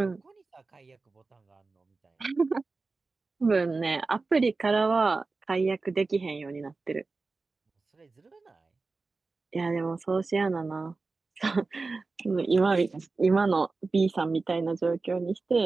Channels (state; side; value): quieter; left; 3.9 dB